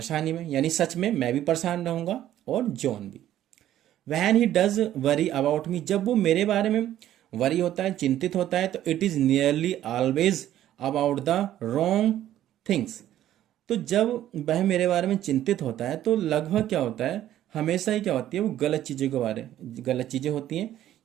में, यानी सच में मैं भी परेशान रहूंगा और जॉन भी। When he does worry about me, जब वो मेरे बारे में वरी होता है, चिंतित होता है, तो it is nearly always about the wrong things. तो जब वह मेरे बारे में चिंतित होता है तो लगभग क्या होता है, हमेशा ही क्या होती है, वो गलत चीजें होती हैं।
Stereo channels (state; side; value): quieter; left; 12.4 dB